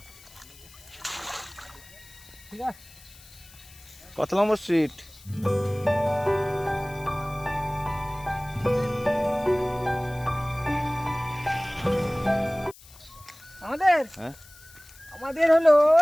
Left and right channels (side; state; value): left; noise; hiss, 22 dB below the sound